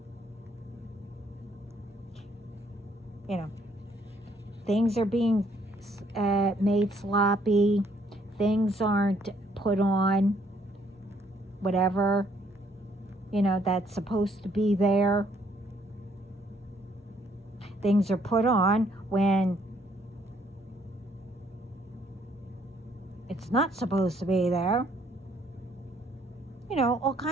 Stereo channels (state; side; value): normal; both; correlation 0.67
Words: You know, things are being made sloppy. Things aren't put on whatever, that's supposed to be there. Things are put on when it's not supposed to be there. All